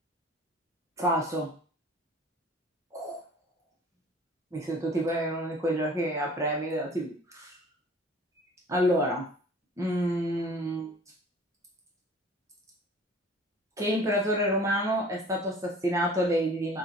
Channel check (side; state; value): both; normal; correlation 0.48